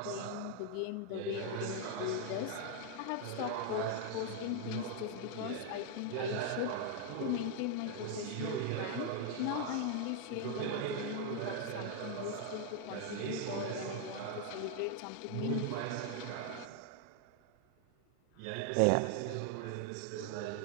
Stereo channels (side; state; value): both; different; correlation 0.00